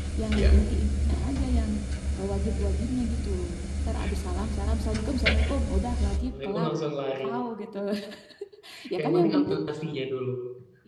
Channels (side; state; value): both; identical; correlation 1.00